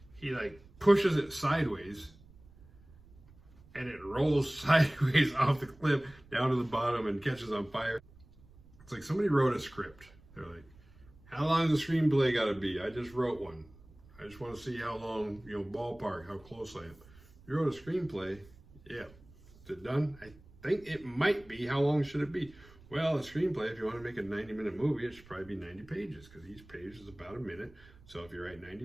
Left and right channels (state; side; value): noise; right; rumble, 24 dB below the sound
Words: He like pushes it sideways and it rolls sideways off the cliff down to the bottom and catches on fire. It's like somebody wrote a script. They're like, how long is the screenplay gotta be? I just wrote one. I just want to see how long, ballpark, how close I am. You wrote a screenplay? Yeah. Is it done? I think it might be. How long should it be? Well, a screenplay, if you want to make a 90-minute movie, it should probably be 90 pages, because each page is about a minute. So if you write